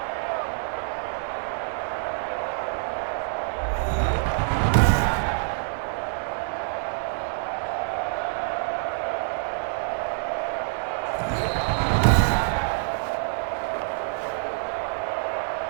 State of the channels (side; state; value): left; silent; 61 dB below the other